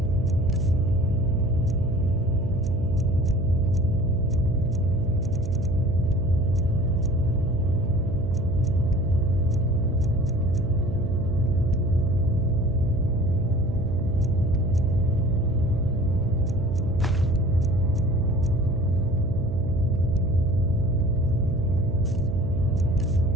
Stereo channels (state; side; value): noise; right; hum, 9 dB below the sound